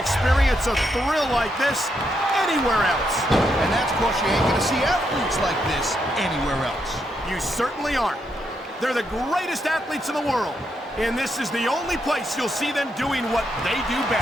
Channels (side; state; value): both; normal; correlation 0.80